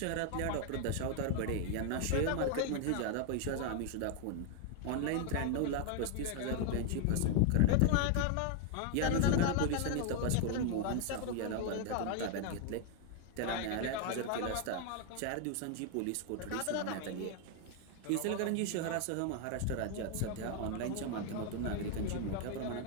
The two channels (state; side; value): different; both; correlation 0.00